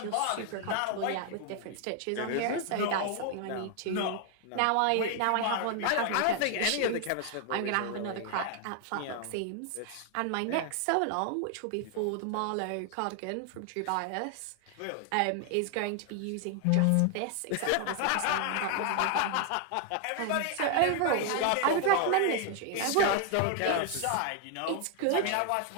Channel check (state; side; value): different; both; correlation 0.00